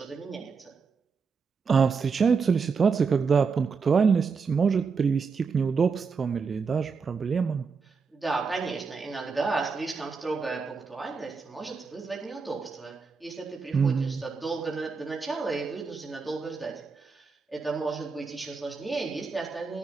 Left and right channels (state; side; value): quieter; left; 5.2 dB